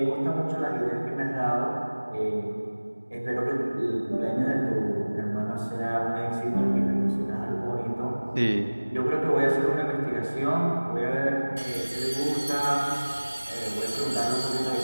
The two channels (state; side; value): inverted; both; correlation -1.00